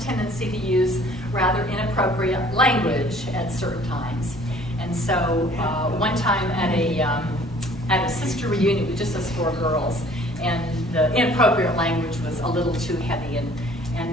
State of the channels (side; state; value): both; normal; correlation 0.54